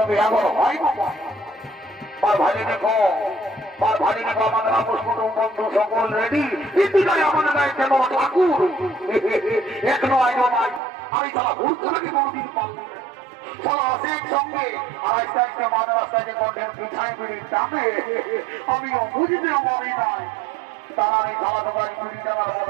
বিয়াগর হয় বাবা। মার ভাই দেখো, মার ভাই দেখো, আমাদের আপোষ কুটুম বন্ধু সকল রেডি, কিন্তু তাই আমাদের গায়ে কেন ঠাকুর এখনো আইনো ভাই। আমি তারা হুড়কাকে কোনদিন পাবো তারা আছে সঙ্গে আস্তে আস্তে মাঝ রাস্তায় কঠের পিছায় পিড়ির দামে আমিও বুঝতে পারি নাই তারা এই খাওয়া দোকান পিড়ি জানার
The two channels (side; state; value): left; drops out; at 10.8 s